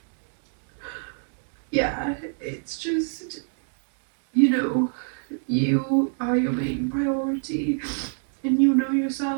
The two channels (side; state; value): left; silent; digital silence